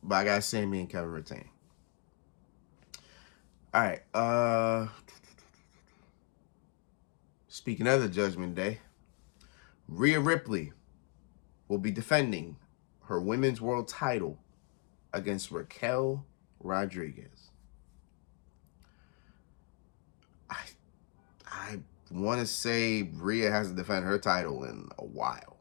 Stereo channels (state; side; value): quieter; right; 29.9 dB